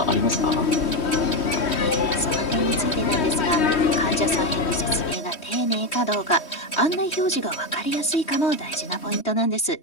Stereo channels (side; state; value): right; late; 3.1 ms